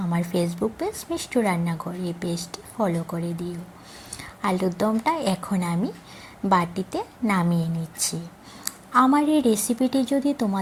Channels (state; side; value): identical; both; correlation 1.00